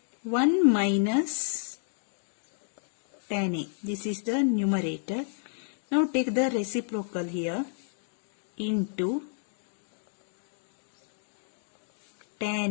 1 minus tan A. This is the numerator. Now take the reciprocal here into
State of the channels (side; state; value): right; silent; digital silence